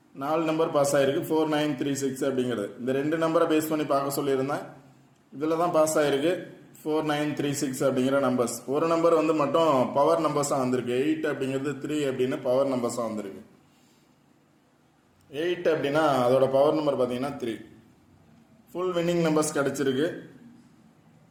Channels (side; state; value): both; identical; correlation 1.00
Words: 4 நம்பர் பாஸ் ஆகிருக்கு. 4936 அப்படிங்கிறது இந்த 2 நம்பரை பேஸ் பண்ணி பார்க்க சொல்லியிருந்தேன். இதில் தான் பாஸ் ஆகிருக்கு 4936 அப்படிங்கிற நம்பர்ஸ். ஒரு நம்பர் மட்டும் பவர் நம்பர்ஸாக வந்திருக்கு. 8 அப்படிங்கிறது 3 அப்படின்னு பவர் நம்பர்ஸாக வந்திருக்கு. 8 அப்படின்னா அதோட பவர் நம்பர் பார்த்தீங்கன்னா 3. ஃபுல் வின்னிங் நம்பர்ஸ் கிடச்சிருக்கு.